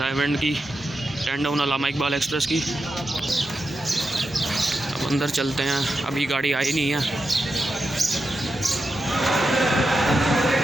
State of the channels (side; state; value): both; normal; correlation 0.88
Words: की 10 टाउन अल्लामा इकबाल एक्सप्रेस की। अब अंदर चलते हैं, अभी गाड़ी आई नहीं है।